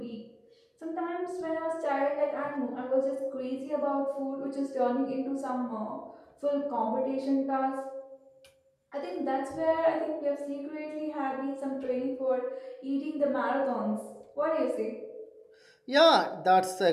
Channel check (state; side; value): identical; both; correlation 1.00